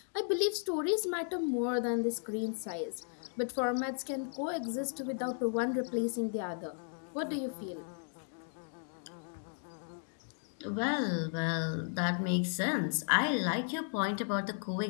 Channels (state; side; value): silent; right; 54 dB below the other